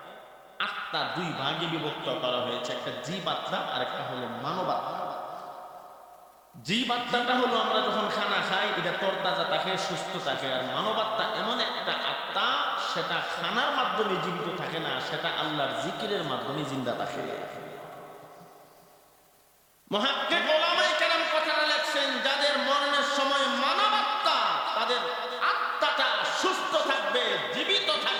আত্মা দুই ভাগে বিভক্ত করা হয়েছে, একটা জীব আত্মা আর একটা হলো মানব আত্মা। জীব আত্মাটা হলো আমরা যখন খানা খাই, এটা তরতাজা থাকে, সুস্থ থাকে। আর মানব আত্মা এমন একটা আত্মা, সেটা খানার মাধ্যমে জীবিত থাকে না, সেটা আল্লাহর জিকিরের মাধ্যমে জিন্দা থাকে। মুহাক্কিক উলামায়ে কেরাম কথাটা লেখছেন, যাদের মরণের সময় মানব আত্মা, তাদের আত্মাটা সুস্থ থাকবে, জীবিত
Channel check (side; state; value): both; identical; correlation 1.00